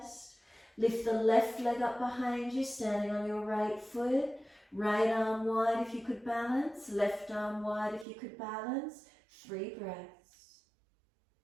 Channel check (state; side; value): drops out; left; at 8.1 s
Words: Lift the left leg up behind you, standing on your right foot. Right arm wide if you could balance, left arm wide if you could balance. 3 breaths.